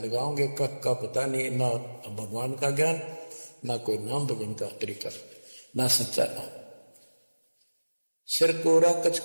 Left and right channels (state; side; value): inverted; both; correlation -1.00